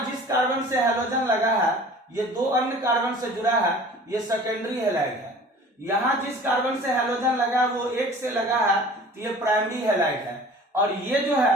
जिस कार्बन से हैलोजन लगा है ये 2 अन्य कार्बन से जुड़ा है, ये सेकेंडरी हैलाइड है। यहां जिस कार्बन से हैलोजन लगा है वो 1 से लगा है, तो ये प्राइमरी हैलाइड है। और ये जो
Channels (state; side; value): normal; both; correlation 0.45